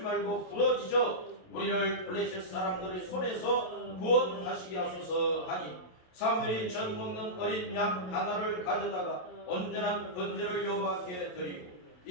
부러지져 우리를 블레셋 사람들의 손에서 구원하시게 하소서 하니 사무엘이 젖 먹는 어린 양 하나를 가져다가 온전한 번제를 여호와께 드리고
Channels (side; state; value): right; late; 27 ms